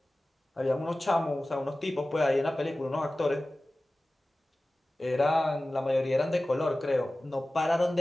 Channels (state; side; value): normal; both; correlation 0.97